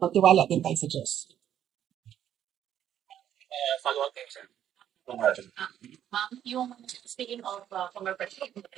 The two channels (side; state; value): left; quieter; 10.5 dB